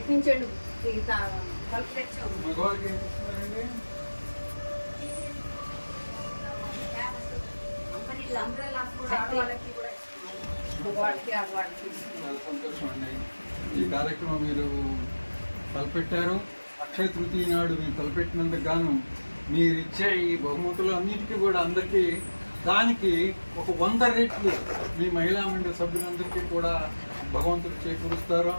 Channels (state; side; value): inverted; both; correlation -1.00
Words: తలుపు తెచ్చాము. సంతోషం అండి. ఈ కార్యక్రమం మీరు తలపెట్టారు. అక్షయ తృతీయ నాడు మీరు తలపెట్టినందుకు గాను మీరు ఇచ్చే ఈ బహుమతులు అన్నిటికీ కూడా అందరికీ దానికి ఒక 100 రెట్లు మీ మహిళా మండలి సభ్యులందరికీ కూడా భగవంతుడు చేకూరుస్తారు.